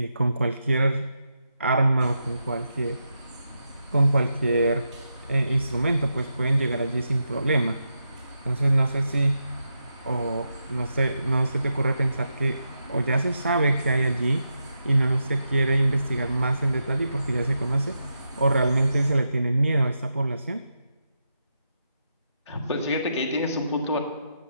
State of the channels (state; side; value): inverted; both; correlation -0.86